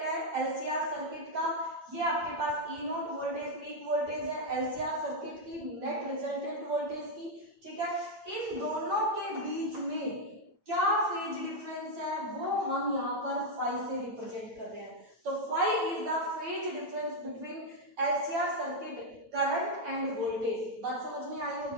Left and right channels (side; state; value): left; late; 8.7 ms